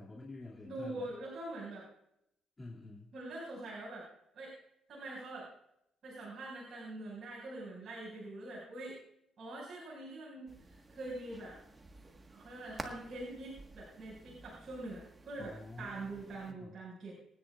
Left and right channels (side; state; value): both; normal; correlation 0.77